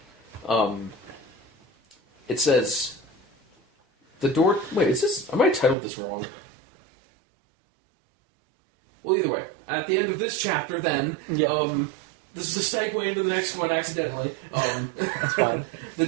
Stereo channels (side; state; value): left; drops out; at 5.8 s